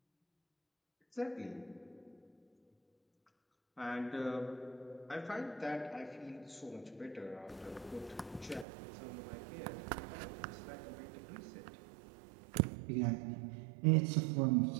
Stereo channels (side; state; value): left; drops out; at 8.7 s